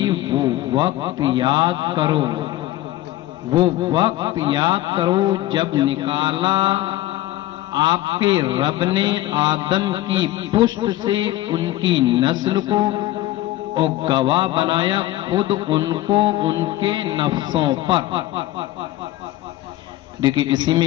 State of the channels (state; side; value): quieter; right; 15.5 dB